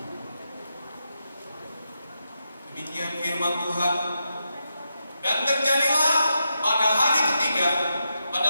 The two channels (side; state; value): both; inverted; correlation -0.86